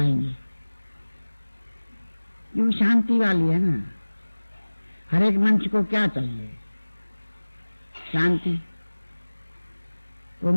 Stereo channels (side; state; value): both; inverted; correlation -1.00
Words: ये शांति वाली है ना। हर एक मंच को क्या चाहिए? शांति। वो